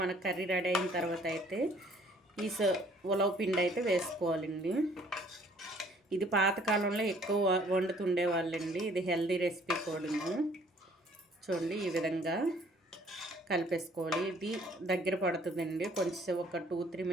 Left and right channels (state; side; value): normal; both; correlation 0.59